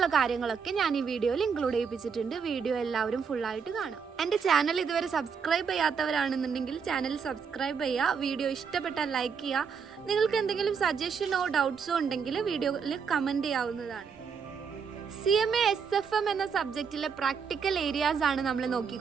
കാര്യങ്ങളൊക്കെ ഞാൻ ഈ വീഡിയോയിൽ ഇൻക്ലൂഡ് ചെയ്യിപ്പിച്ചിട്ടുണ്ട്. വീഡിയോ എല്ലാവരും ഫുള്ളായിട്ട് കാണാം. എൻ്റെ ചാനൽ ഇതുവരെ സബ്സ്ക്രൈബ് ചെയ്യാത്തവരാണെന്നുണ്ടെങ്കിൽ ചാനൽ സബ്സ്ക്രൈബ് ചെയ്യുക, വീഡിയോ ഇഷ്ടപ്പെട്ടാൽ ലൈക്ക് ചെയ്യുക. നിങ്ങൾക്ക് എന്തെങ്കിലും സജഷനോ ഡൗട്ട്സോ ഉണ്ടെങ്കിൽ വീഡിയോയിൽ കമൻറ്റ് ചെയ്യാവുന്നതാണ്. CMA SFM എന്ന സബ്ജക്റ്റിലെ പ്രാക്ടിക്കൽ ഏരിയാസ് ആണ് നമ്മൾ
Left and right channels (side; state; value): left; quieter; 6.3 dB